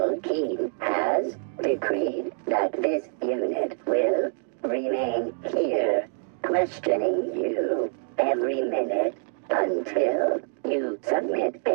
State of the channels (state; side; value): silent; left; digital silence